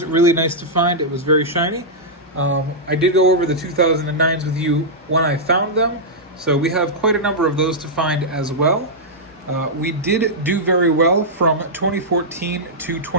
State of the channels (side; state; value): both; normal; correlation -0.09